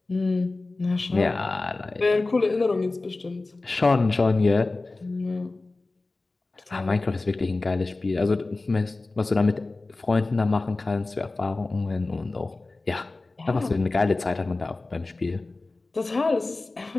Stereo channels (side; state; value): right; quieter; 3.3 dB